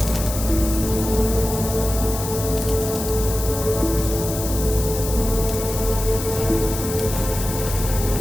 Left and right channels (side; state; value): left; noise; hiss, 7 dB below the sound